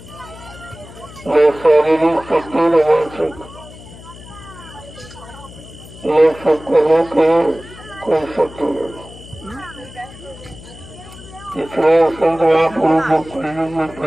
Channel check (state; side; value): noise; left; hum, 18 dB below the sound